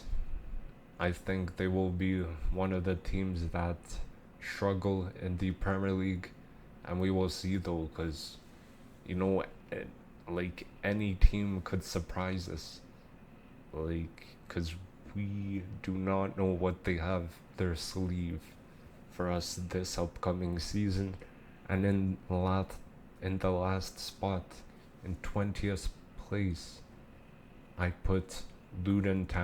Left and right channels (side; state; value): both; identical; correlation 1.00